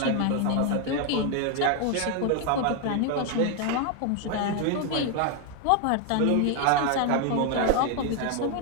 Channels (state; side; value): different; both; correlation 0.01